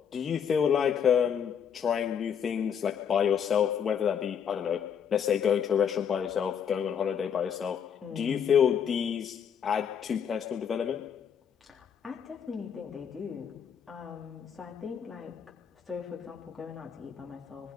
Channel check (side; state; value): right; quieter; 7.8 dB